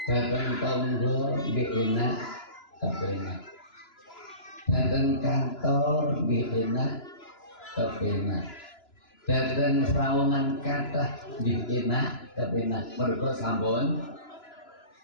Jateng tangga enak kepenak. Jateng kantor enak kepenak. Jateng sawangan kathah enak kepenak. Mergo sampun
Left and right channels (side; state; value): right; late; 2.9 ms